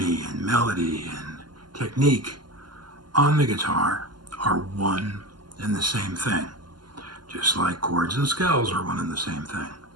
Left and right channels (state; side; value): late; left; 0.71 ms